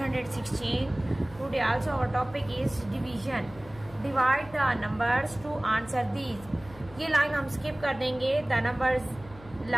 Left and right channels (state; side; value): noise; left; hum, 20 dB below the sound